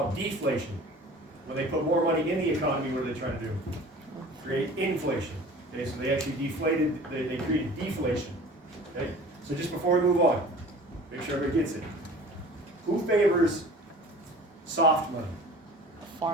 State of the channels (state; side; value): normal; both; correlation 0.43